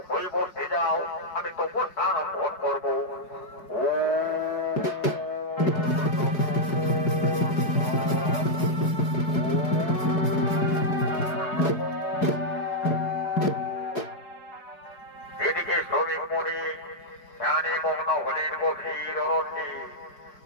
হয়ে বসে যাও। আমি তপস্যা আরম্ভন করবো। এদিকে শ্রমিক মুনি ধ্যানে মগ্ন হলেন গভীর অরণ্যে,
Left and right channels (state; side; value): late; right; 4.7 ms